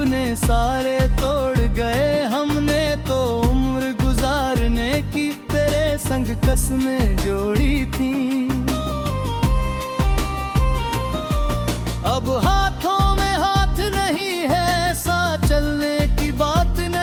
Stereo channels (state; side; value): identical; both; correlation 1.00